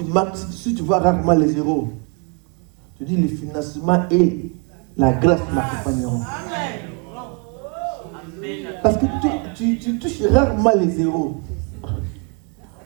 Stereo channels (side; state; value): left; quieter; 33.7 dB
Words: Si tu vois rarement les zéros, tu dis le financement et la grâce m'accompagneront. Parce que tu touches rarement les zéros.